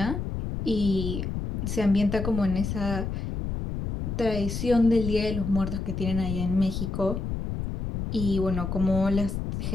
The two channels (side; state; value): left; noise; rumble, 4 dB below the sound